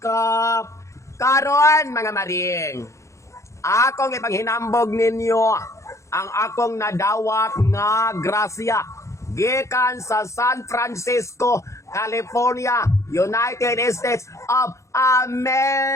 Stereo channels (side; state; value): right; late; 0.14 ms